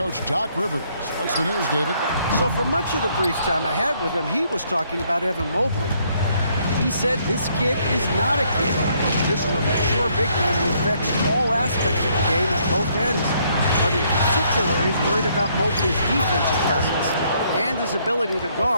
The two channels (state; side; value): inverted; both; correlation -0.68